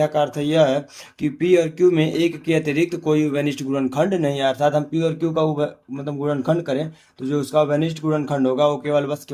का अर्थ यह है कि p और q में एक के अतिरिक्त कोई उभयनिष्ठ गुणनखंड नहीं है। अर्थात हम p और q का गुणनखंड करें तो जो उसका उभयनिष्ठ गुणनखंड होगा वो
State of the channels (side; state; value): both; identical; correlation 1.00